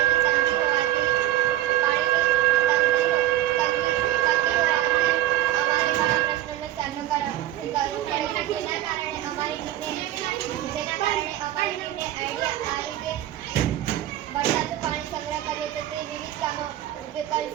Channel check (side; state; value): left; quieter; 14.0 dB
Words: તંગી હોવાથી અમારે ઘણા પ્રશ્નોનો સામનો કરવો પડે છે. જેના કારણે અમારી ટીમને આઈડિયા આવી કે વરસાદનું પાણી સંગ્રહ કરીએ તો તે વિવિધ કામો ઉપયોગ કરી